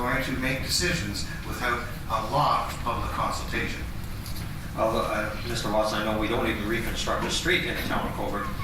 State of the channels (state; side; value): identical; both; correlation 1.00